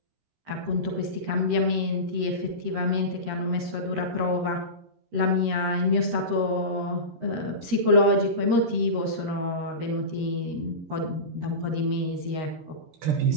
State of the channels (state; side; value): late; left; 13 ms